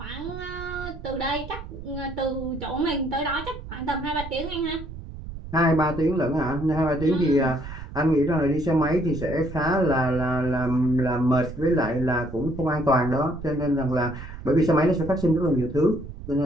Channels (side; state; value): right; noise; rumble, 11 dB below the sound